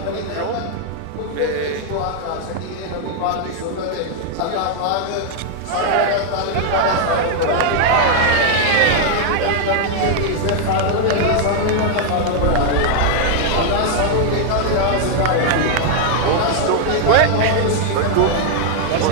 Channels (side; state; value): both; different; correlation 0.00